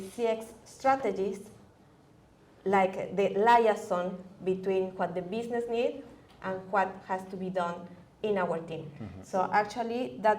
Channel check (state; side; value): identical; both; correlation 1.00